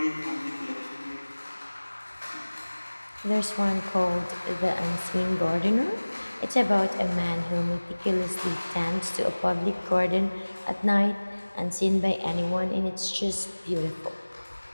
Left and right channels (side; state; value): both; inverted; correlation -1.00